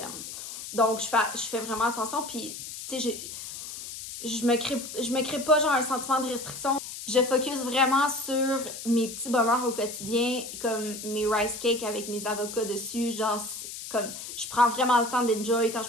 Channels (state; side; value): noise; left; hiss, 10 dB below the sound